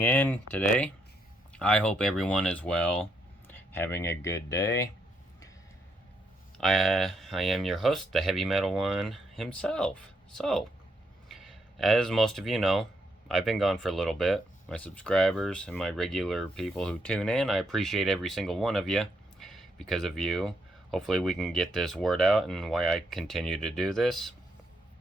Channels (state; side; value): normal; both; correlation 0.76